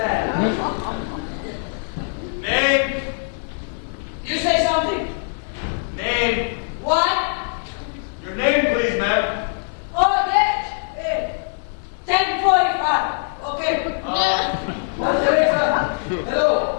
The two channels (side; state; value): right; silent; 64 dB below the other